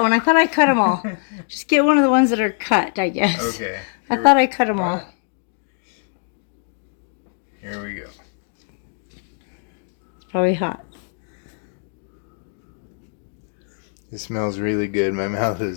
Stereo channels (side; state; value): right; silent; 64 dB below the other